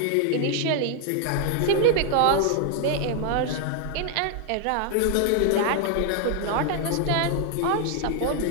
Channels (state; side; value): different; both; correlation 0.00